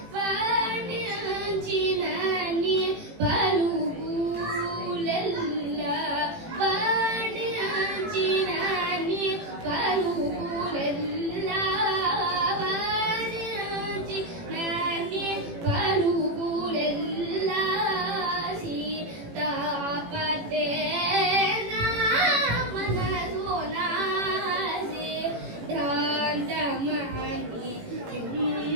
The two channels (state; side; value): late; left; 18 ms